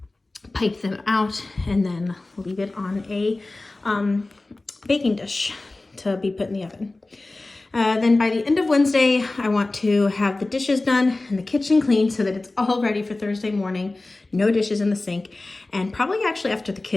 pipe them out, and then leave it on a baking dish to be put in the oven. Then by the end of Wednesday, I want to have the dishes done and the kitchen clean so that it's all ready for Thursday morning. No dishes in the sink. And probably actually after the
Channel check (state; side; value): quieter; right; 3.0 dB